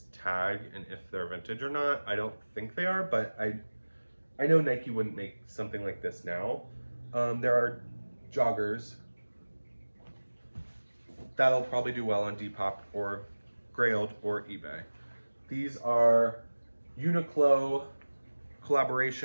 tag and if they're vintage or not. I don't think they are, but I know Nike wouldn't make something like this now. There are joggers. That'll probably do well on Depop or Grailed or eBay. These are Uniqlo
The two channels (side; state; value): both; inverted; correlation -1.00